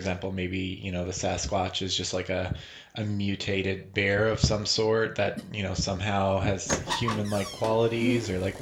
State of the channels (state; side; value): identical; both; correlation 1.00